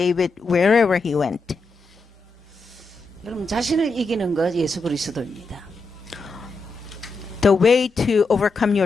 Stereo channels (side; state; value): right; quieter; 3.3 dB